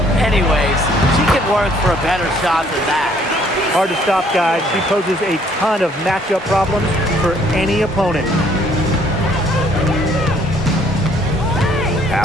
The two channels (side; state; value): both; normal; correlation 0.62